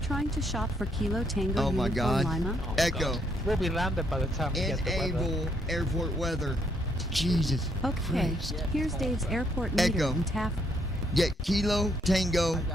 to shop for Kilo Tango Oh my Uniform God. Lima? Oh, Echo. God. We'll be landed by the time we get the weather. Enable airport weather. Jesus. Okay, Christ. here's Dave's airport meter Echo. in Taft. Get Kilo Tango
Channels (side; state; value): both; normal; correlation 0.72